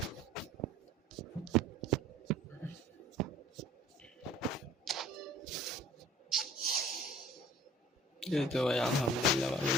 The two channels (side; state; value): both; normal; correlation 0.49